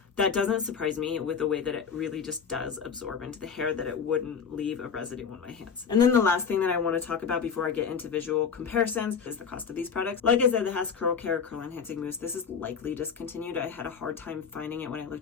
That doesn't surprise me with the way that it really just does absorb into the hair, that it wouldn't leave a residue on my hands. And then the last thing that I want to talk about before I get into visual comparisons is the cost of these products. Like I said, the Hask Curl Care Curl Enhancing Mousse, this is likely discontinued. I had a hard time finding it when I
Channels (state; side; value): quieter; right; 6.4 dB